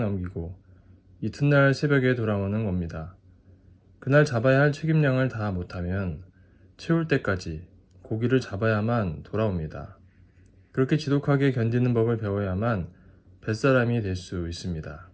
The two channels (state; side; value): identical; both; correlation 1.00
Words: 넘기고 이튿날 새벽에 돌아오는 겁니다. 그날 잡아야 할 책임량을 다 못하면 채울 때까지 고기를 잡아야만 돌아옵니다. 그렇게 지독하게 견디는 법을 배워야만 뱃사람이 될 수 있습니다.